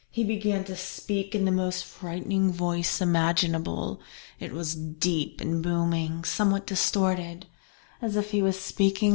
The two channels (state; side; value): silent; right; 57 dB below the other